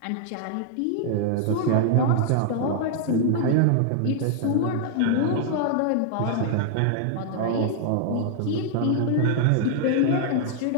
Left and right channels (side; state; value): both; different; correlation -0.01